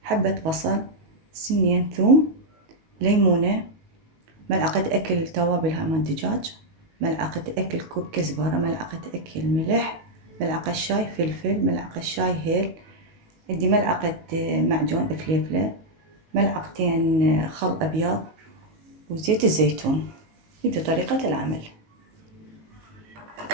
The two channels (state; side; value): late; left; 19 ms